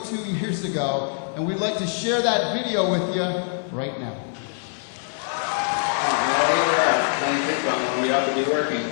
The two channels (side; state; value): right; silent; 55 dB below the other